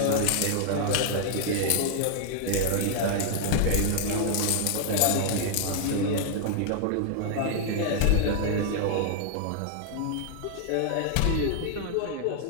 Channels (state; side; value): different; both; correlation 0.00